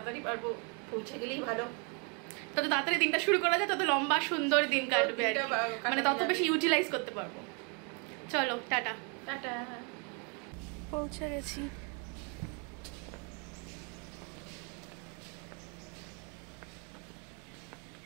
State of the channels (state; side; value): quieter; left; 35.9 dB